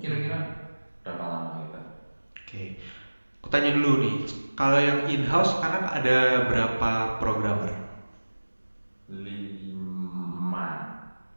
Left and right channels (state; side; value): inverted; both; correlation -1.00